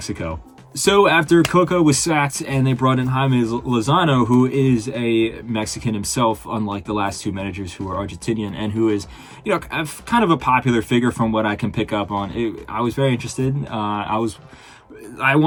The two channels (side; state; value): both; identical; correlation 1.00